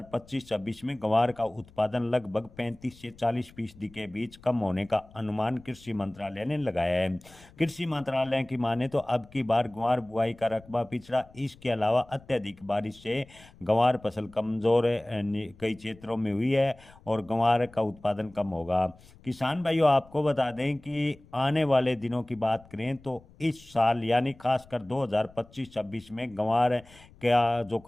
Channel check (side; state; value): left; noise; rumble, 24 dB below the sound